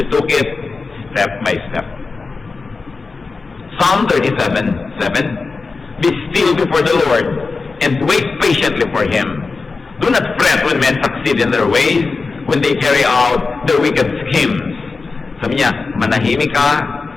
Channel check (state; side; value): quieter; right; 4.2 dB